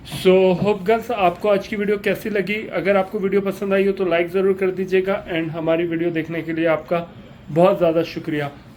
सो होप गर्ल्स आपको आज की वीडियो कैसी लगी? अगर आपको वीडियो पसंद आई हो तो लाइक ज़रूर कर दीजिएगा, एंड हमारी वीडियो देखने के लिए आपका बहुत ज़्यादा शुक्रिया।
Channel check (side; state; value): both; identical; correlation 1.00